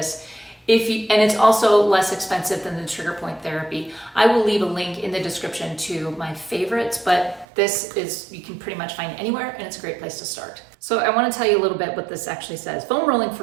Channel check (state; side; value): drops out; left; at 7.5 s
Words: And it's also less expensive than the Trigger Point Therapy. I will leave a link in the description to my favorites, but this is, you can pretty much find anywhere and it's a great place to start. So I want to tell you a little bit what this actually says. Foam rolling for